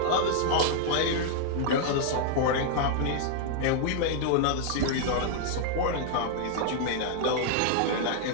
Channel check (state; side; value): different; both; correlation 0.00